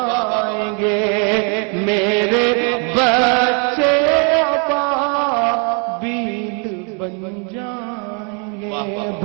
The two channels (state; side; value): quieter; left; 38.0 dB